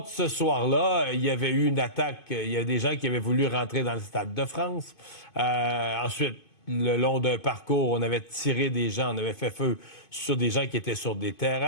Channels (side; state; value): right; late; 2.5 ms